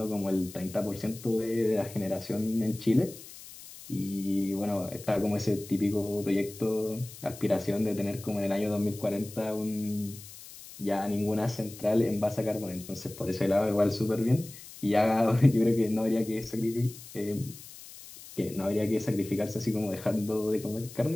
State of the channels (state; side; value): noise; left; hiss, 16 dB below the sound